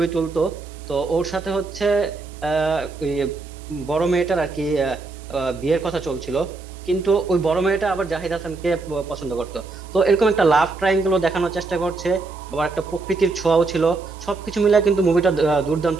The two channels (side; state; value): left; quieter; 3.7 dB